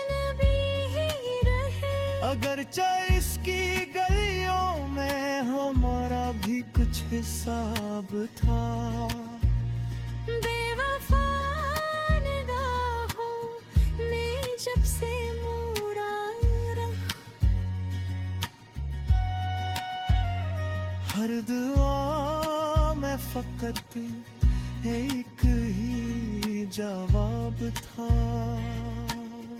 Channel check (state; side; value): identical; both; correlation 1.00